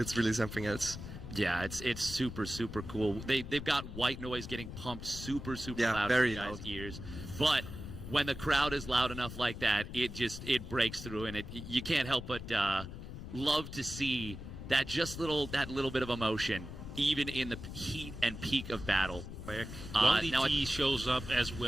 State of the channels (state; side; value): noise; left; rumble, 10 dB below the sound